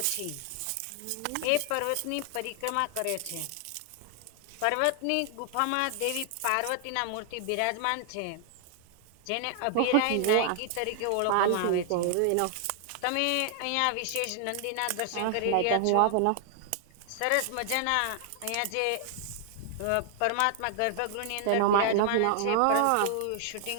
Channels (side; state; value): both; different; correlation 0.00